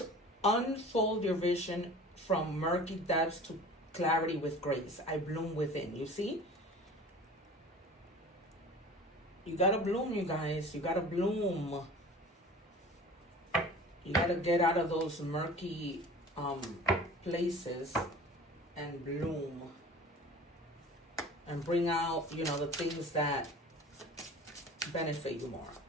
Unfold your vision from murky depths to clarity with grace. I bloom within. You see? You gotta bloom, you guys. You gotta bloom. You gotta get out of those murky places and bloom. And bring out, you know, the things that benefit you more.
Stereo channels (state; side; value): normal; both; correlation 0.41